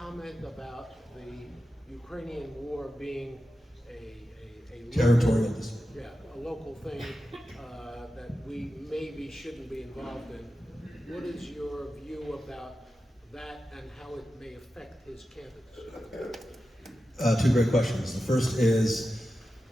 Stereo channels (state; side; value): normal; both; correlation 0.92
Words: about the Ukrainian war being a territorial, local thing that we maybe shouldn't be involved in. What is your view about that and how it may affect his candidacy? 2 great questions. The first is